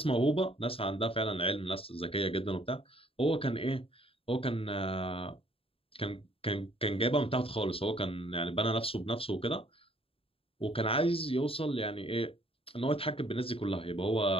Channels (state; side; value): late; right; 0.27 ms